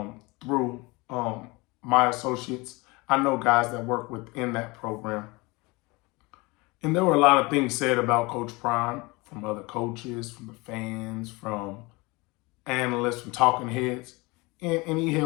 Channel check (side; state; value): right; quieter; 24.7 dB